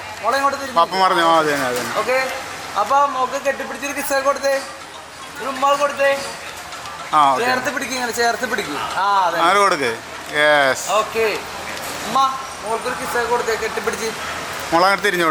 പപ്പ പറഞ്ഞു. ആ അതെ അതെ. ഓക്കെ, അപ്പൊ മോക്ക് കെട്ടിപ്പിടിച്ചൊരു കിസ്സൊക്കെ കൊടുത്തേ, ഒരു ഉമ്മാൾ കൊടുത്തേ. ആ ചേർത്ത് പിടിക്കും, ഇങ്ങനെ ചേർത്ത് പിടിക്കും. ആ അതെ, അങ്ങനെ കൊടുക്ക്. യെസ്. ഓക്കെ. ഉമ്മ മോൾക്കൊരു കിസ്സൊക്കെ കൊടുത്തേ, കെട്ടിപ്പിടിച്ച്. മോളങ്ങനെ തിരിഞ്ഞു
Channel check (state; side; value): identical; both; correlation 1.00